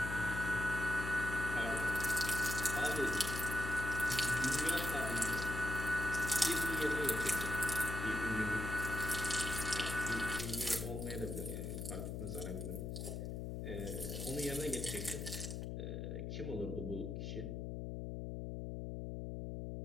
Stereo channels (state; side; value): noise; left; hum, 4 dB below the sound